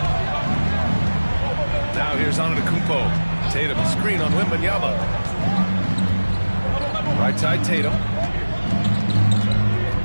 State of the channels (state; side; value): inverted; both; correlation -1.00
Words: Now here's Antetokounmpo. Tatum screen on Wembanyama. Right side Tatum.